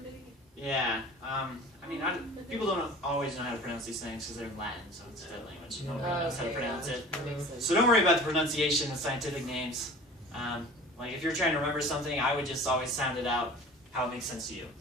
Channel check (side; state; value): both; normal; correlation 0.42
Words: Yeah. I mean, people don't always know how to pronounce these things because they're in Latin, so it's a dead language. Nobody knows how to pronounce it. That makes sense. So don't worry about the pronunciation of scientific names. Like if you're trying to remember something, I would just always sound it out how it makes sense to you.